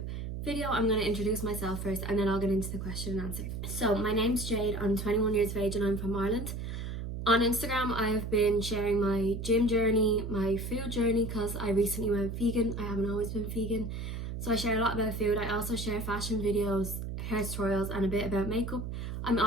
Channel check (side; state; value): right; noise; hum, 5 dB below the sound